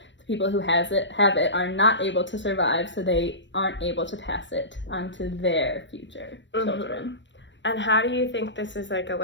the people who have it are not able to survive, so they aren't able to pass it on to their future children. And how do you think this is like a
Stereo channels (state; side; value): late; right; 0.53 ms